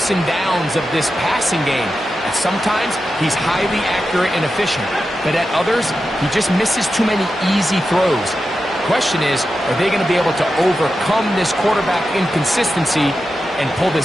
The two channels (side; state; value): both; normal; correlation 0.90